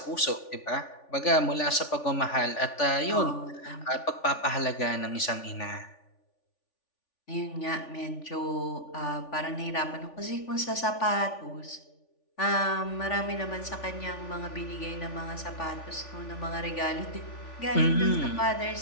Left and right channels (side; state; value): right; late; 3.4 ms